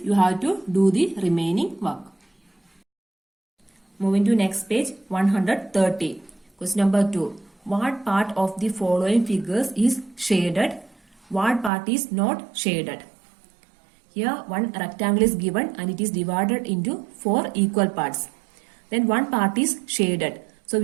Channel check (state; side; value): drops out; left; at 11.7 s